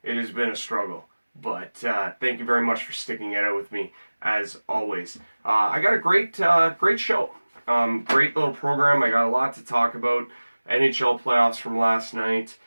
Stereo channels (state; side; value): inverted; both; correlation -1.00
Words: it has been a struggle. But thank you very much for sticking it out with me, as always. I got a great show. Great little program. I got a lot to talk about. NHL playoffs from last night.